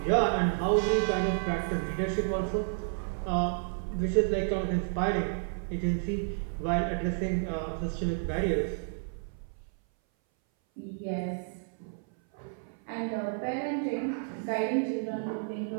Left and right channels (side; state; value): left; silent; 57 dB below the other